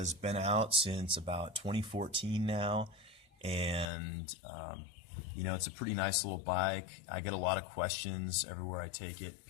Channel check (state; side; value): drops out; right; at 3.9 s